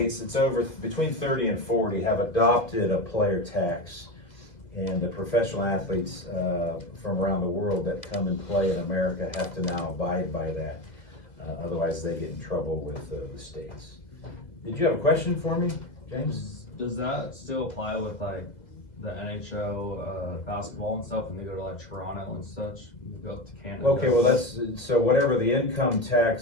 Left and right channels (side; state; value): right; late; 2.0 ms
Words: it's over between 30 and 40, have adopted a player tax, and the professional athletes from around the world that come and play in America have to now abide by that. Otherwise, they get in trouble with the states. Did you have a question for me, James? Does that still apply with like the NHL basketball and stuff, and they go to like Toronto and such? You go up to Canada. Okay, well so whatever the income